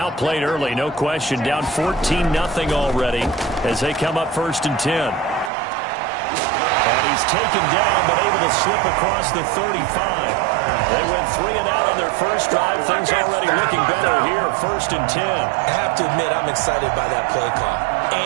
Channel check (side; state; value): left; drops out; at 5.5 s